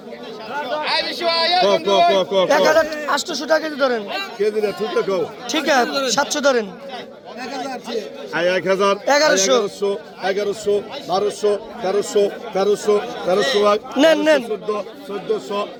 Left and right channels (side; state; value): both; identical; correlation 1.00